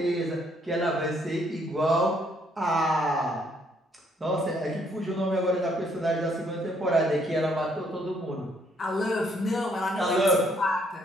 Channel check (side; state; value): both; normal; correlation 0.68